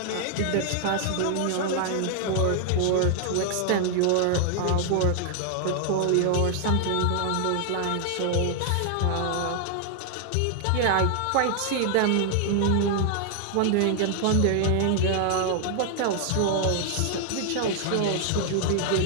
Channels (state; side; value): different; both; correlation 0.00